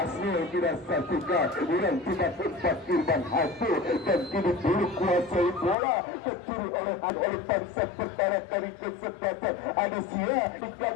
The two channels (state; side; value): drops out; right; at 5.8 s